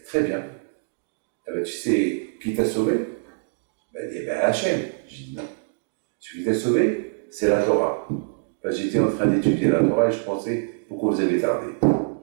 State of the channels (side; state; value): left; silent; digital silence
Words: très bien. Ah ben, tu sais qui t'a sauvé? Il dit, Hachem. J'ai dit, non. Celui qui t'a sauvé, c'est la Torah. J'étais en train d'étudier la Torah et je pensais, pourquoi vous avez tardé?